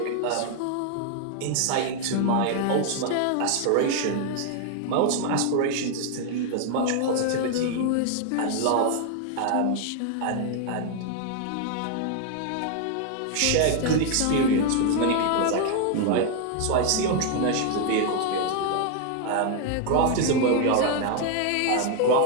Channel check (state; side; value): different; both; correlation 0.00